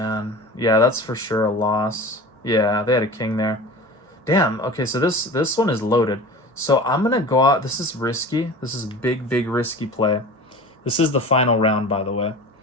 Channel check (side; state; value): both; normal; correlation 0.36